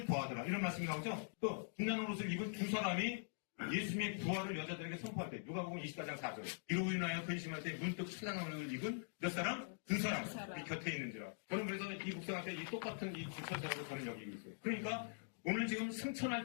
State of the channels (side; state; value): right; silent; digital silence